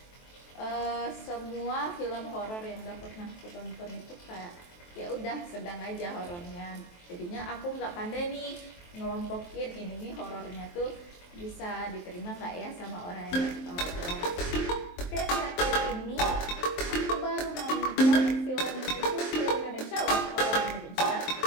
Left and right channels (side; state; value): right; late; 23 ms